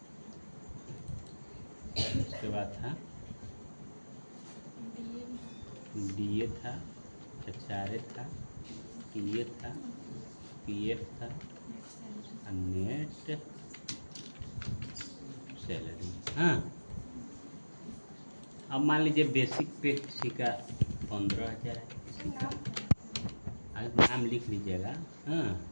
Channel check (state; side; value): inverted; both; correlation -1.00